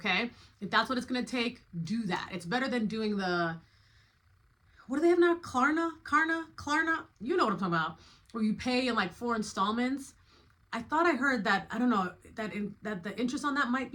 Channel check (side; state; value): both; identical; correlation 1.00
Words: If that's what it's going to take, do that. It's better than doing what do they have now? Klarna? You know what I'm talking about. Where you pay in like 4 installments. I thought I heard that, I don't know, that the interest on that might